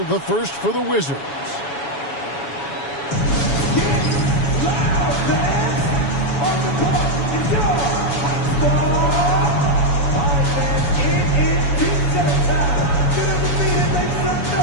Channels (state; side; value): late; right; 7.1 ms